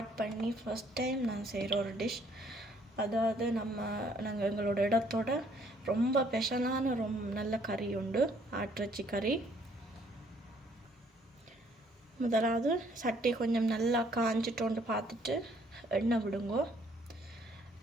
பண்ணி ஃபர்ஸ்ட் டைம் நான் செய்கிற ஒரு டிஷ். அதாவது நாங்கள் எங்களோட இடத்தோட ரொம்ப ஸ்பெஷலான நல்ல கறி உண்டு, ஆட்டிறைச்சி கறி. முதலாவது சட்டி கொஞ்சம் நல்லா காஞ்சிட்டோண்டு பார்த்துட்டு எண்ணெய் விடுங்கோ.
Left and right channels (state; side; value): normal; both; correlation 0.64